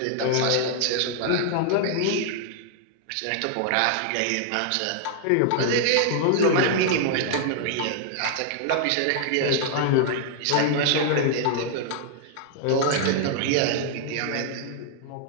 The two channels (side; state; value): both; different; correlation 0.00